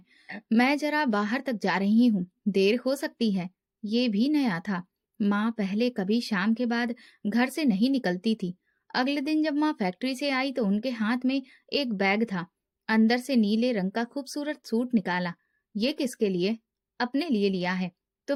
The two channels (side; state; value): both; identical; correlation 1.00